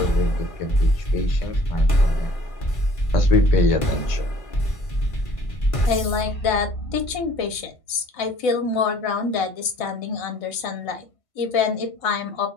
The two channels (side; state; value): right; late; 1.5 ms